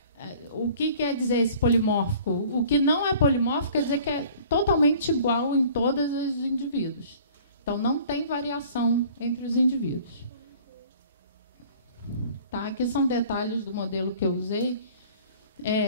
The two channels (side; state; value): both; inverted; correlation -0.50